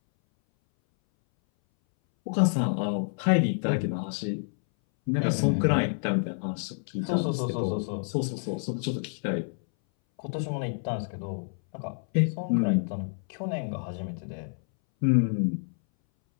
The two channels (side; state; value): right; silent; 59 dB below the other